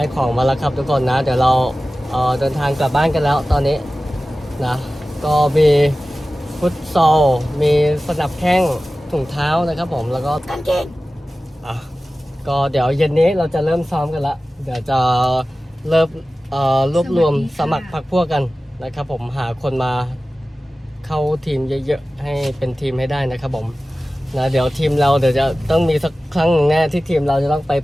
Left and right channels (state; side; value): normal; both; correlation 0.96